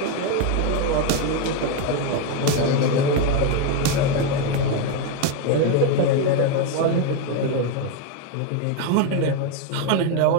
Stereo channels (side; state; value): both; different; correlation 0.02